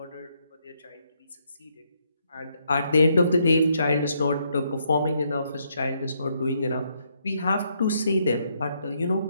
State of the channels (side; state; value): both; inverted; correlation -0.75